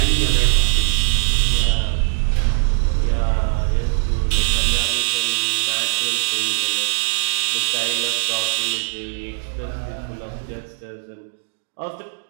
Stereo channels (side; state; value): left; silent; digital silence